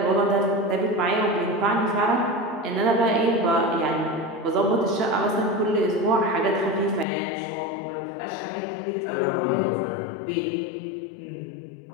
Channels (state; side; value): drops out; right; at 7.1 s